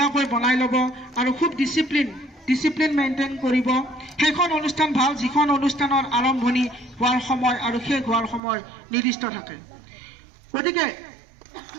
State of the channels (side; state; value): left; drops out; at 8.4 s